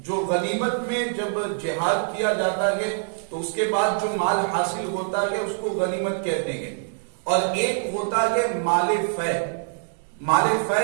جو غنیمت میں جب جہاد کیا جاتا ہے تو اس کے بعد جو مال حاصل ہوتا ہے اس کو غنیمت کہتے ہیں، اور ایک ہوتا ہے مال فے۔ مال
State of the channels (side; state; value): left; silent; digital silence